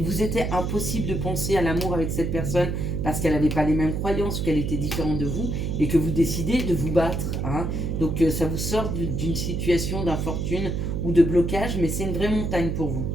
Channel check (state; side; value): noise; right; hum, 1 dB below the sound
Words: vous était impossible de penser à l'amour avec cette personne parce qu'elle n'avait pas les mêmes croyances, qu'elle était différente de vous, et que vous décidez de vous battre, hein. Donc ça vous sort d'une situation d'infortune ou de blocage, mais c'est une vraie montagne pour vous.